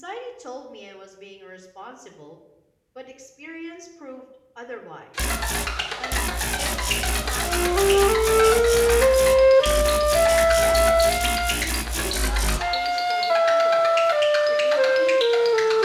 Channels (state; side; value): identical; both; correlation 1.00